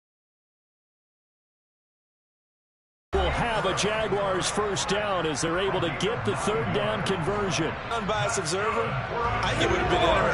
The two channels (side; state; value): both; identical; correlation 1.00